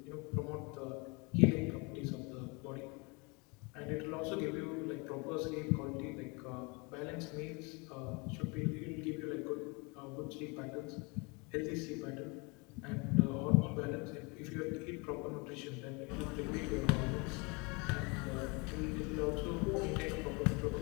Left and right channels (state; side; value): quieter; right; 29.4 dB